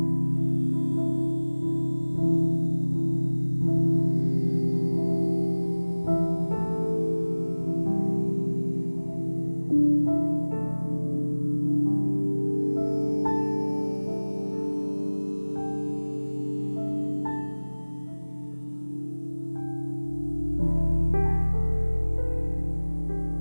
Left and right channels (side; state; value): both; inverted; correlation -1.00